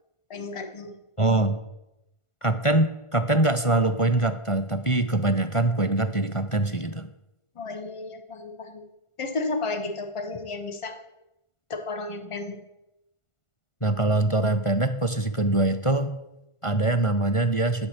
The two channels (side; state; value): right; late; 1.5 ms